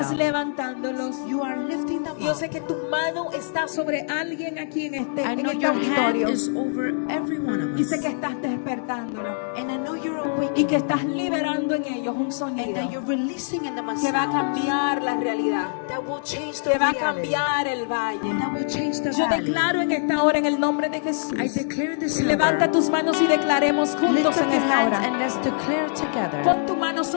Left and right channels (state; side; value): silent; right; digital silence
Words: them. levantándolos. You are lifting them Yo up. sé que tu mano está sobre alguien aquí en I en know este your hand auditorio. is over every one of Y us. sé que estás despertándolo And I know you're y awakening que estás liberando en ellos un and sonido that you're releasing in them a que va a sound cambiar la realidad, that will change the que va a reality, cambiar el valle. that will change the Yo valley. declaro en esta hora en el nombre de Jesús. I declare this hour. Levanta tus manos y declaremos Lift juntos up en your esta hands hora. and let's declare together. Pon tu mano